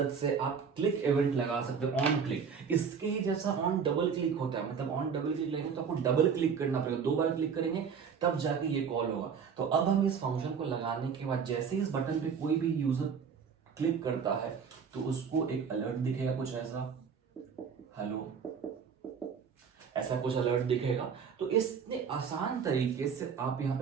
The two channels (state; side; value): quieter; left; 6.5 dB